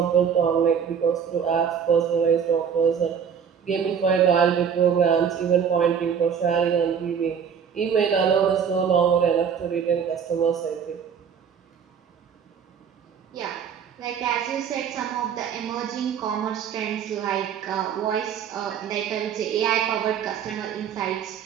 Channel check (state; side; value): quieter; left; 7.4 dB